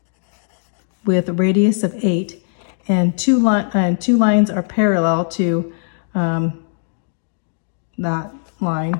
with a radius of 8, and two lines are parallel to that line.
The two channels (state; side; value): silent; right; digital silence